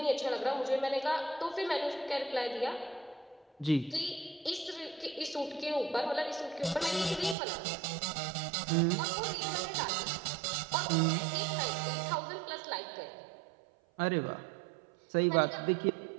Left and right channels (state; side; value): drops out; left; at 7.4 s